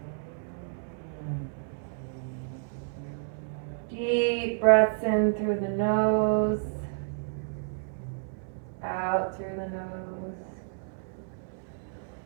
Deep breaths in through the nose, out through the nose.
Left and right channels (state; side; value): silent; left; 58 dB below the other